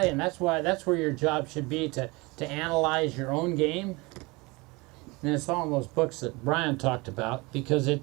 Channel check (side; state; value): left; quieter; 24.9 dB